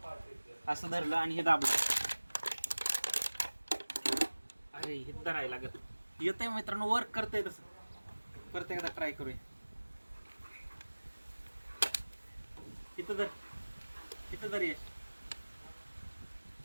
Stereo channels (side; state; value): both; inverted; correlation -1.00